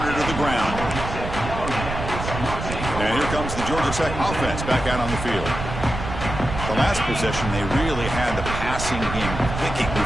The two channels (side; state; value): right; noise; rumble, 6 dB below the sound